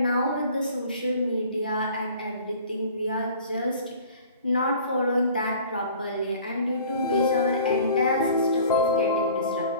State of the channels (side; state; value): both; inverted; correlation -0.48